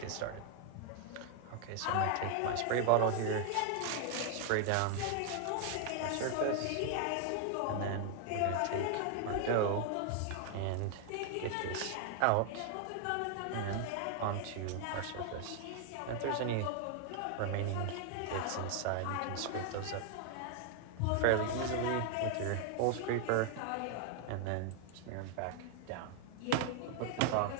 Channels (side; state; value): both; different; correlation 0.00